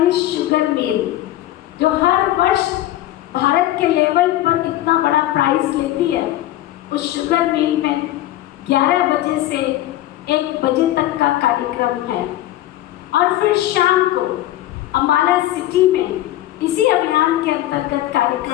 शुगर मिल, जो हर वर्ष भारत के लेवल पर इतना बड़ा प्राइज लेती है, उस शुगर मिल में 11 बजे से 1 बजे तक का कार्यक्रम है। और फिर शाम को अम्बाला सिटी में इसी अभियान के अंतर्गत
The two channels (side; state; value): right; quieter; 14.6 dB